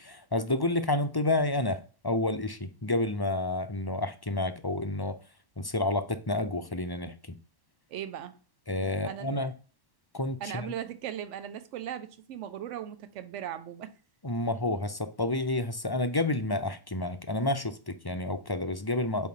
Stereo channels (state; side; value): late; right; 1.1 ms